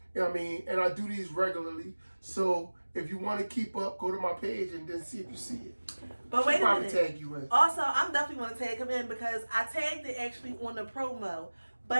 You know what I mean? And I do these regularly. So if you want to keep up, go to my page and then see if you see it. But wait a minute. Tag you in. Also, I'm definitely going to tag him in because I tagged it actually on the promo.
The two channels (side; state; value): both; inverted; correlation -1.00